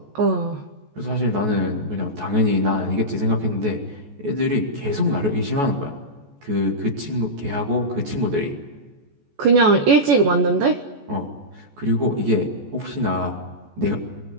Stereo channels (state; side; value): late; left; 14 ms